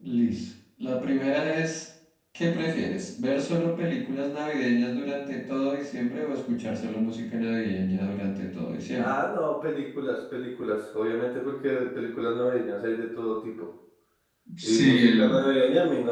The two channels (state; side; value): identical; both; correlation 1.00